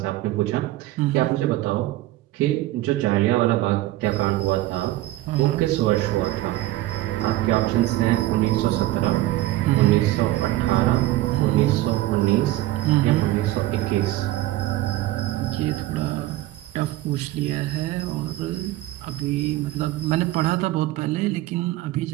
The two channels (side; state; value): left; quieter; 16.1 dB